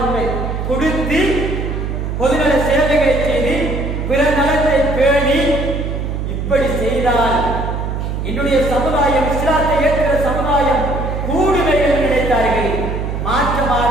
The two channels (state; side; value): noise; right; hum, 3 dB below the sound